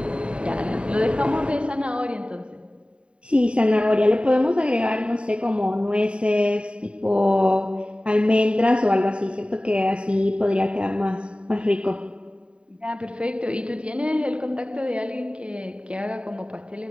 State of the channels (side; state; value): left; late; 0.055 ms